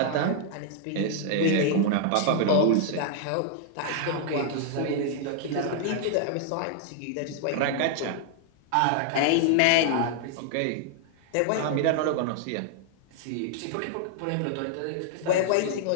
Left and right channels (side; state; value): both; different; correlation 0.00